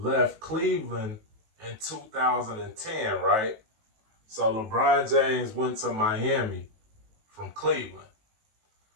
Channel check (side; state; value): left; late; 18 ms